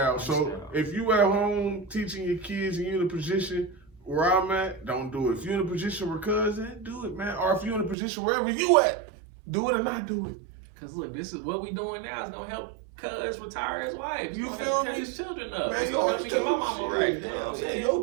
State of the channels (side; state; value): left; drops out; at 8.0 s